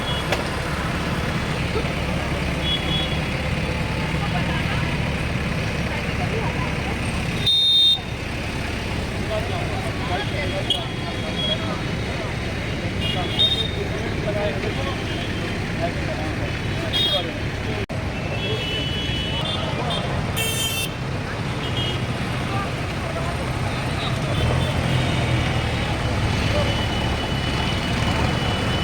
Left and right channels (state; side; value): identical; both; correlation 1.00